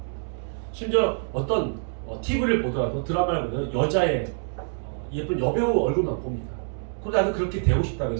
심지어 어떤 TV를 보더라도 드라마를 보면 여자의 예쁜 여배우 얼굴만 봅니다. 그러다 나도 그렇게 되고 싶다고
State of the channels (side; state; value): left; silent; digital silence